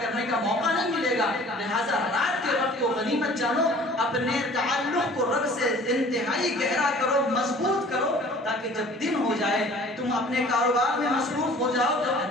کرنے کا موقع نہیں ملے گا۔ لہٰذا رات کے وقت کو غنیمت جانو، اپنے تعلق کو رب سے انتہائی گہرا کرو، مضبوط کرو، تاکہ جب دن ہو جائے تم اپنے کاروبار میں مصروف ہو جاؤ تو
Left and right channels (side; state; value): both; normal; correlation 0.49